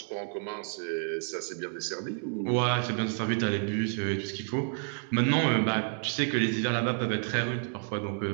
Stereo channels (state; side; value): silent; left; 58 dB below the other